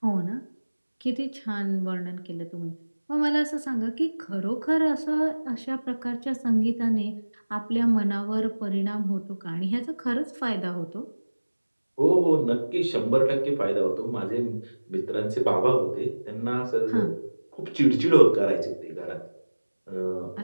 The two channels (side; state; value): both; inverted; correlation -1.00